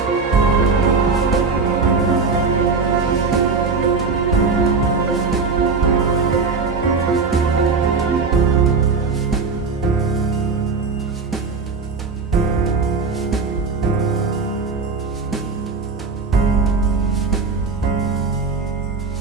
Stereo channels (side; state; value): left; quieter; 4.6 dB